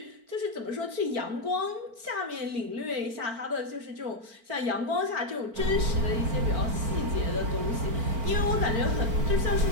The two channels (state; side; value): late; left; 4.4 ms